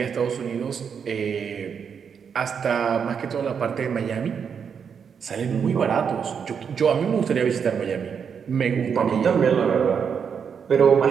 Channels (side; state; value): left; quieter; 6.9 dB